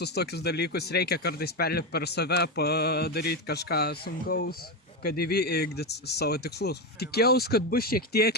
tokius dalykus, reikia kartais perlipti per save, padaryti kažką sunkaus, kad įvykdyti savo tikslus. Tikėjausi, kad bus šiek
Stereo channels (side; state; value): both; normal; correlation 0.12